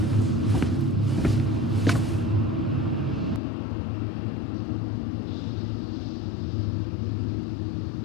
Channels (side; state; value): right; drops out; at 3.4 s